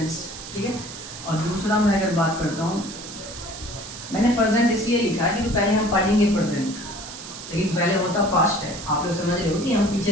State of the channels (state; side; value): noise; right; hiss, 12 dB below the sound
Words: ठीक है, और दूसरा मैं अगर बात करता हूँ, मैंने प्रेजेंट इसलिए लिखा है क्योंकि पहले हम पढ़ेंगे प्रेजेंट, लेकिन पहले होता पास्ट है। आप लोग समझ रहे हो कि हम